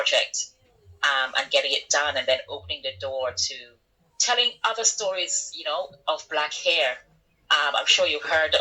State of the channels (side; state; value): both; identical; correlation 1.00